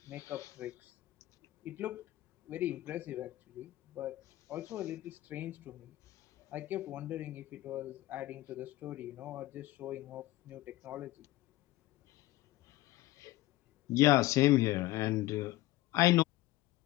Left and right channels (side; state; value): right; quieter; 17.2 dB